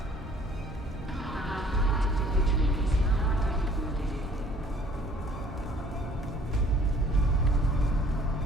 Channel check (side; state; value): both; normal; correlation 0.56